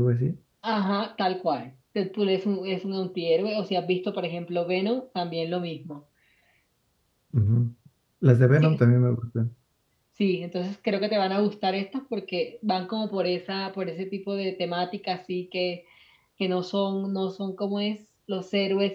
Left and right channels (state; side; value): identical; both; correlation 1.00